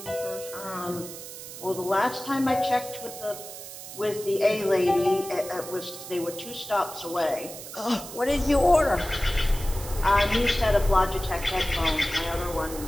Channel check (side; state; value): right; noise; hiss, 12 dB below the sound